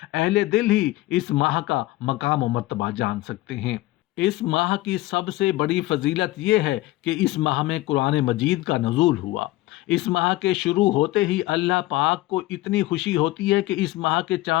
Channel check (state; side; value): quieter; right; 17.7 dB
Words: اہل دل ہی اس ماہ کا مقام و مرتبہ جان سکتے ہیں۔ اس ماہ کی سب سے بڑی فضیلت یہ ہے کہ اس ماہ میں قرآن مجید کا نزول ہوا۔ اس ماہ کے شروع ہوتے ہی اللہ پاک کو اتنی خوشی ہوتی ہے کہ اس ماہ کے